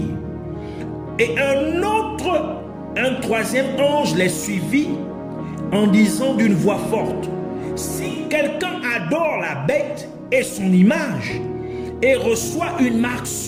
et un troisième ange les suivit en disant d'une voix forte: si quelqu'un adore la bête et son image et reçoit une marque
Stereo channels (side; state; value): both; identical; correlation 1.00